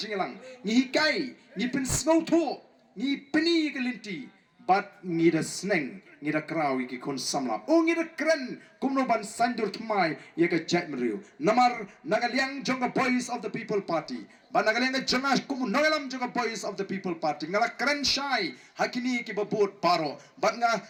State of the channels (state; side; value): identical; both; correlation 1.00